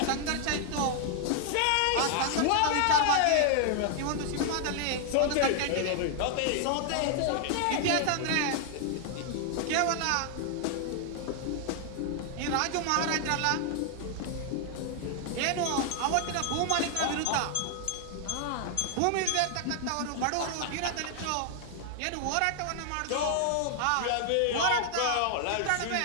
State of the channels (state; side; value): different; both; correlation 0.00